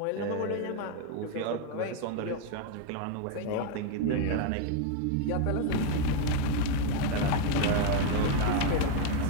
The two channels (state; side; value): different; both; correlation 0.01